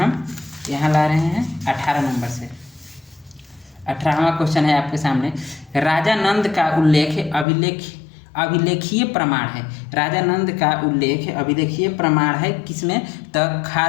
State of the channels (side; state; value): right; drops out; at 7.5 s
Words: यहाँ ला रहे हैं 18 नंबर से। 18वां क्वेश्चन है आपके सामने, राजा नंद का उल्लेख अभिलेखीय प्रमाण है। राजा नंद का उल्लेख अभिलेखीय प्रमाण है किसमें? तो